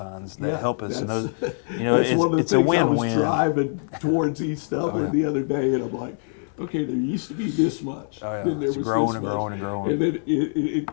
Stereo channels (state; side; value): silent; right; digital silence